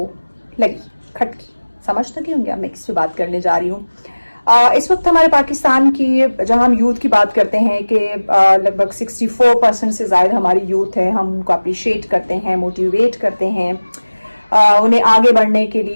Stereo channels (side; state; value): both; inverted; correlation -1.00